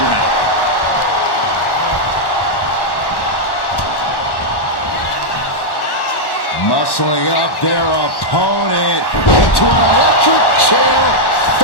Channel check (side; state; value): right; late; 1.1 ms